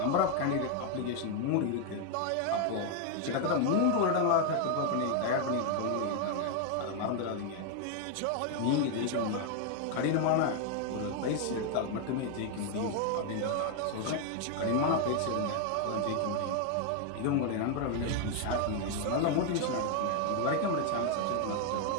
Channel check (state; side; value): different; both; correlation 0.00